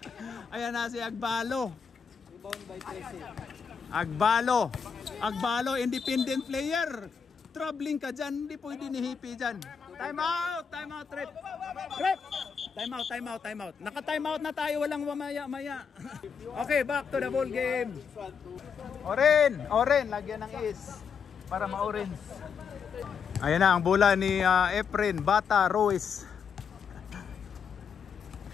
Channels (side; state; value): right; quieter; 6.5 dB